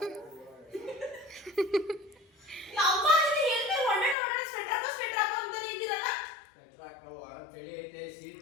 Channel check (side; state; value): right; drops out; at 4.2 s